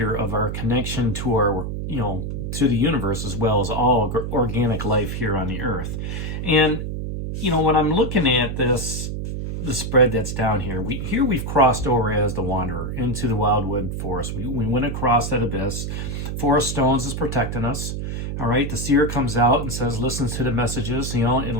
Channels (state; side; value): noise; right; hum, 4 dB below the sound